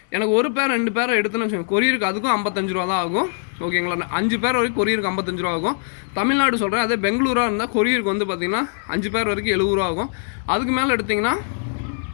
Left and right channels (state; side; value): silent; right; digital silence